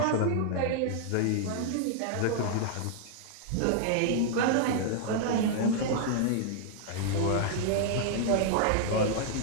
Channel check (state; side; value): different; both; correlation -0.01